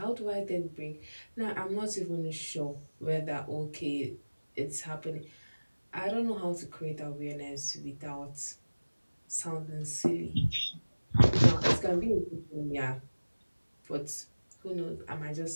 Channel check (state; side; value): inverted; both; correlation -1.00